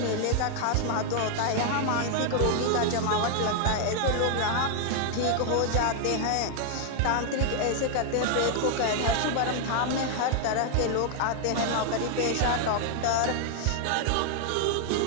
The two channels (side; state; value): both; different; correlation 0.00